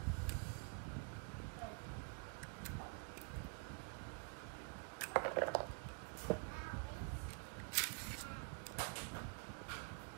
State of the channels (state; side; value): quieter; left; 36.6 dB